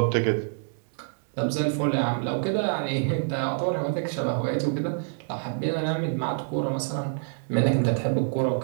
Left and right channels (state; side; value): silent; left; digital silence